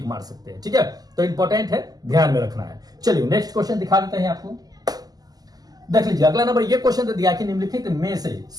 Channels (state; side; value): late; left; 0.18 ms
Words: मार सकते हैं। ठीक है, तो इंपॉर्टेंट है, ध्यान में रखना है। चलिए नेक्स्ट क्वेश्चन दिखा देते हैं आपको। देख लीजिए अगला नंबर ये क्वेश्चन दे दिया कि निम्नलिखित में से